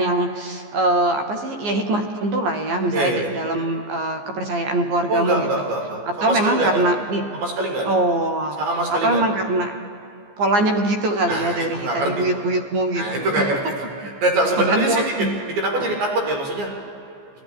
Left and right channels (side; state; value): left; late; 15 ms